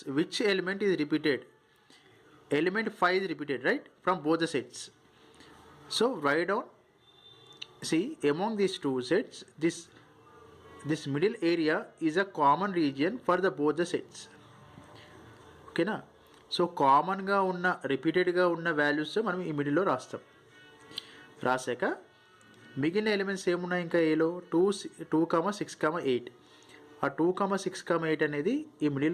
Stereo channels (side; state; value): both; identical; correlation 1.00